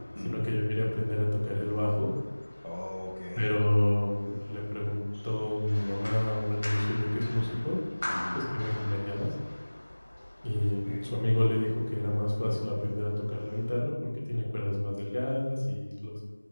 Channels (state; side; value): inverted; both; correlation -1.00